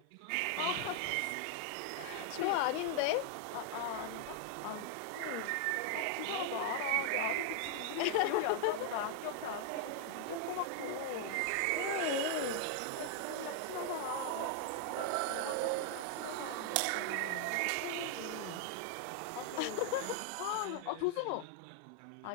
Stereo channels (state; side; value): different; both; correlation 0.00